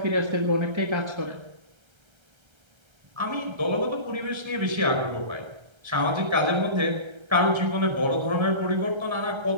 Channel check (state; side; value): late; left; 1.3 ms